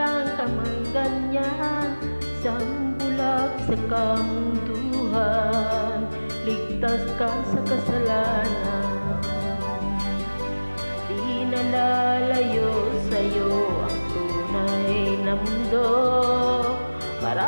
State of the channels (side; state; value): both; inverted; correlation -1.00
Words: ka mang ganyan. Isang bulag sa kamunduhan, ligtas ka sa kasalanan. Di nalalayo sa'yo ang tunay na mundo.